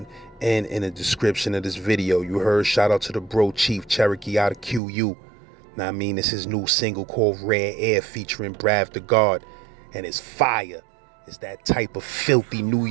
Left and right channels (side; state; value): left; drops out; at 4.8 s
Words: and in the description of this video. You heard, shout out to the bro Chief Cherokee out of QU. Now I mean, it's his new single called Rare Air featuring Brav the God, and it's fire. It's that type of filthy New